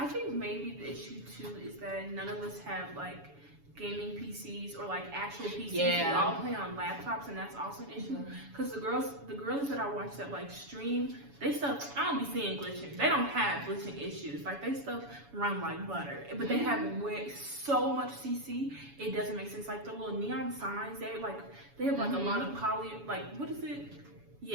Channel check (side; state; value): left; late; 7.1 ms